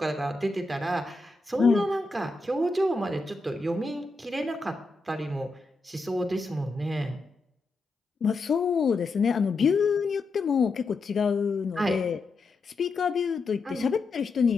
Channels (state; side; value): quieter; right; 3.5 dB